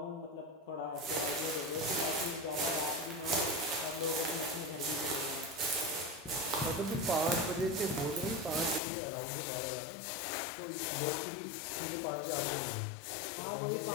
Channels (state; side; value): drops out; right; at 8.8 s